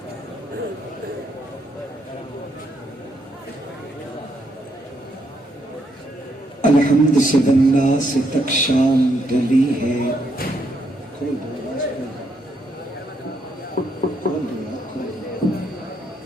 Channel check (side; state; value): both; normal; correlation 0.75